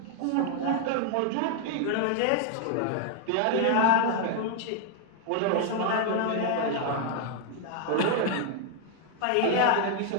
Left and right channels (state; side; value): different; both; correlation 0.00